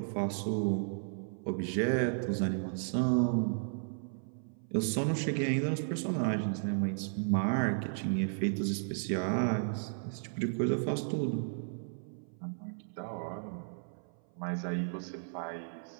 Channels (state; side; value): silent; left; 55 dB below the other